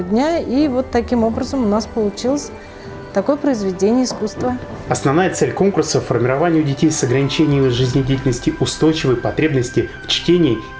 дня. И вот таким образом у нас получилось такое произведение искусства. Основная цель конкурса – формирование у детей с ограничениями жизнедеятельности устойчивой потребности в чтении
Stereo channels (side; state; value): both; identical; correlation 1.00